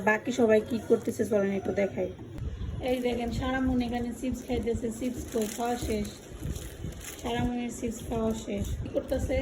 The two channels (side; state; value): both; identical; correlation 1.00